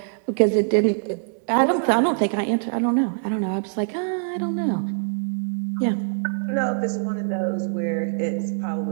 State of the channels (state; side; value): silent; left; digital silence